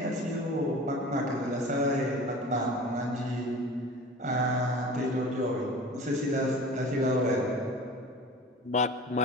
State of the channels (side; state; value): both; normal; correlation 0.39